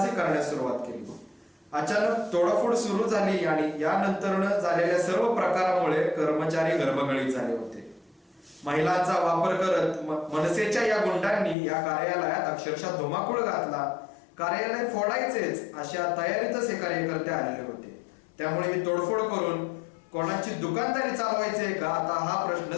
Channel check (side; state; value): right; drops out; at 11.6 s